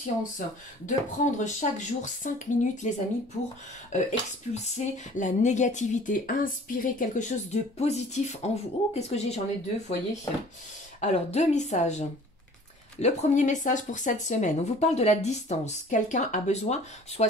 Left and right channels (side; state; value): both; normal; correlation 0.49